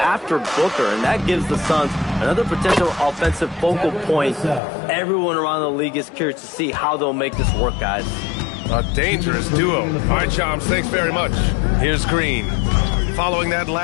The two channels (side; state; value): right; drops out; at 4.6 s